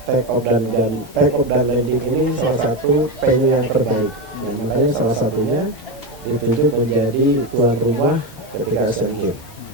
take off dan landing ini salah satu venue yang terbaik. Yang makanya salah satunya ditunjuk menjadi tuan rumah ketika Asian Games.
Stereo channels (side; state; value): both; normal; correlation 0.14